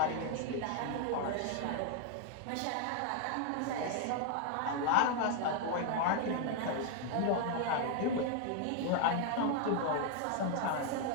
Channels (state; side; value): different; both; correlation 0.00